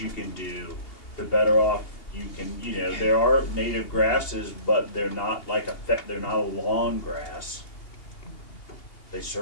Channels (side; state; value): right; late; 2.8 ms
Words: can do, the better off you can, you know, there are native grasses, but they're not like they're not a lawn grass. They